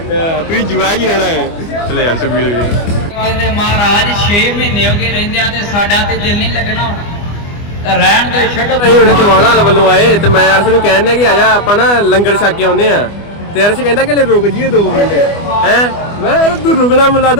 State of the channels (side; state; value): right; late; 24 ms